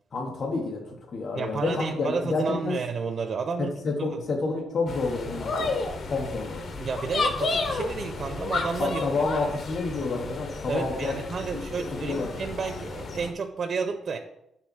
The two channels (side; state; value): both; normal; correlation 0.77